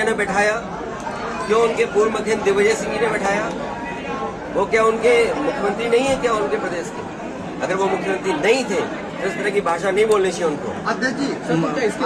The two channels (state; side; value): identical; both; correlation 1.00